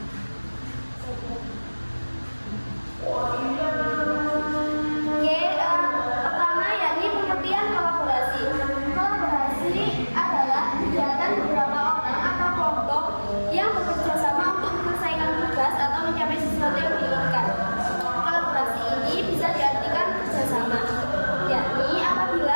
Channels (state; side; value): inverted; both; correlation -1.00